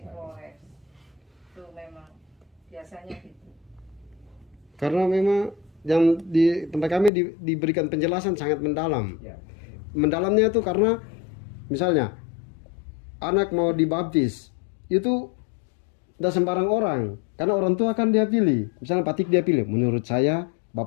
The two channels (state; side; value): drops out; right; at 7.1 s